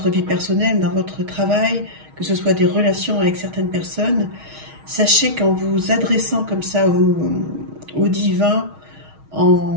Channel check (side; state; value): left; late; 6.4 ms